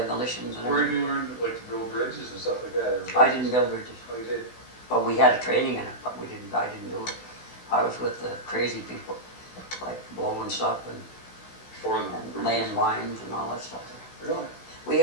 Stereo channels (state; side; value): late; right; 16 ms